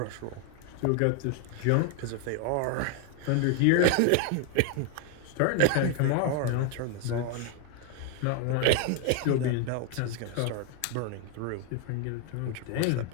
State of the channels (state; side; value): different; both; correlation 0.00